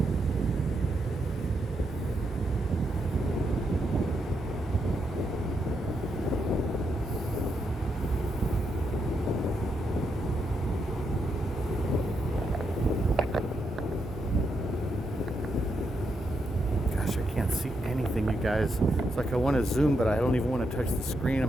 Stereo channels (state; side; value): normal; both; correlation 0.81